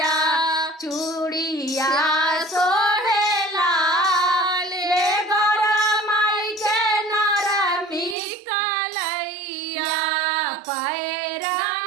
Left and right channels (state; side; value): drops out; left; at 8.2 s